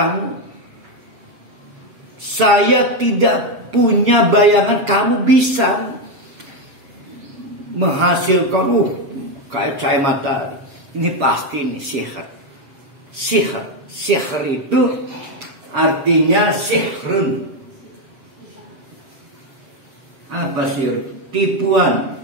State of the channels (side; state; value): left; late; 7.2 ms